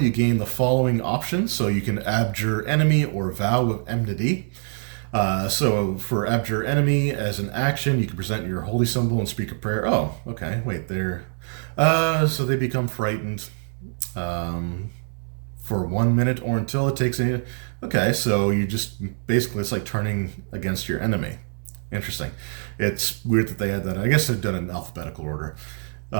gain the following options. So you can Abjure Enemy or Vow of Enmity. So for Abjure Enemy, as an action, you can present your holy symbol and speak a prayer. Oh, okay, wait, they're... so they become frightened for 1 minute or until it takes any... Okay, so you just... Basically, it's like turning against your enemy. Interesting. It's weird that they had that. I guess they've done it in alphabetical order.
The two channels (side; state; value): left; silent; 60 dB below the other